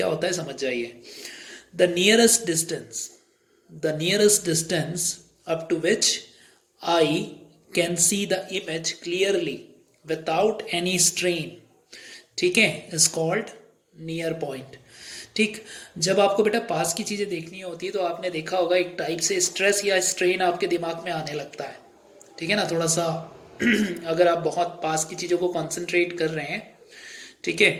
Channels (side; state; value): both; identical; correlation 1.00